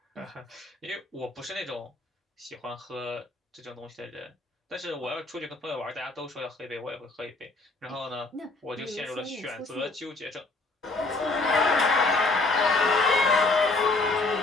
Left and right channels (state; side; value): quieter; right; 3.3 dB